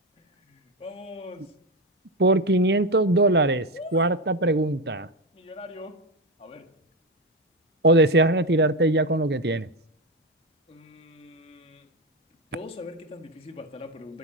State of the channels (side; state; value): both; normal; correlation 0.13